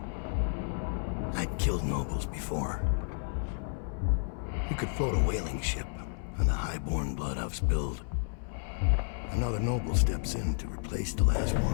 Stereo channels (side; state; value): right; silent; 57 dB below the other